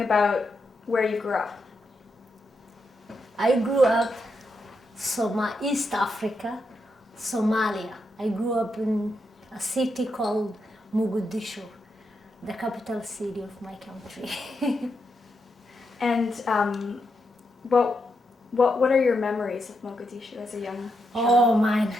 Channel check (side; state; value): both; normal; correlation 0.83